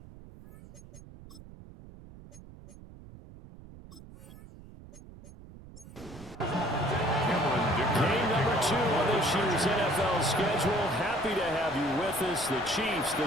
Game number 2 on this year's NFL schedule. Happy to have you with us. The Chiefs,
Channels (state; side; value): noise; right; rumble, 18 dB below the sound